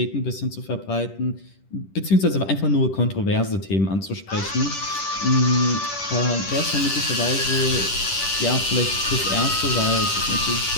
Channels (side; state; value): right; late; 10 ms